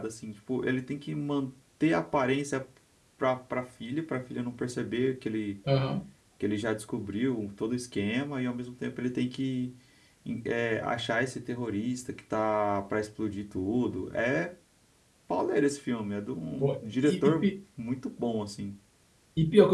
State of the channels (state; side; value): identical; both; correlation 1.00